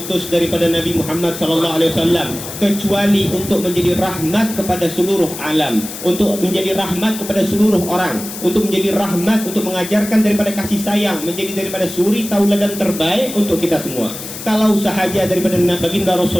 daripada Nabi Muhammad SAW kecuali untuk menjadi rahmat kepada seluruh alam, untuk menjadi rahmat kepada seluruh orang, untuk menjadi rahmat, untuk mengajarkan daripada kasih sayang, menjadi daripada suri tauladan terbaik untuk kita semua. Kalau sahaja daripada baginda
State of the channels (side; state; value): left; noise; hiss, 10 dB below the sound